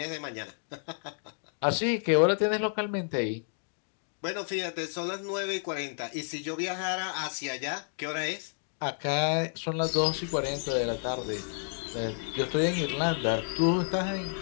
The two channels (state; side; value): silent; right; digital silence